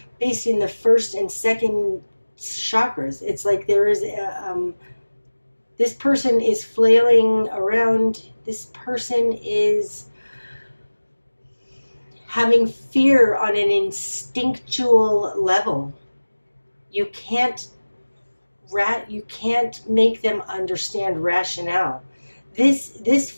based in the first and second chakras. It's like there is this person is flailing around. This person is having fear on an instinctual level. You can't make them understand rationale. This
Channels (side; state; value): both; inverted; correlation -1.00